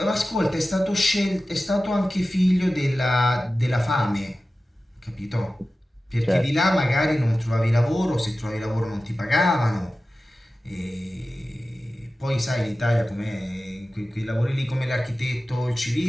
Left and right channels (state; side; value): normal; both; correlation 0.95